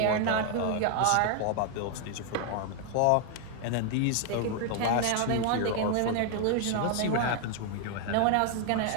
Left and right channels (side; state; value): both; different; correlation 0.00